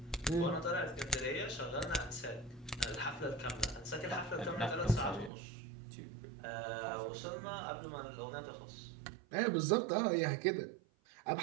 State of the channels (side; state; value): left; drops out; at 5.3 s